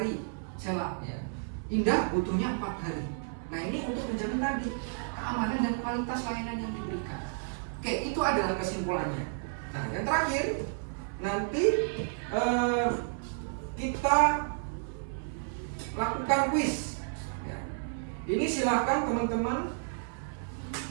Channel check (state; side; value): silent; left; 57 dB below the other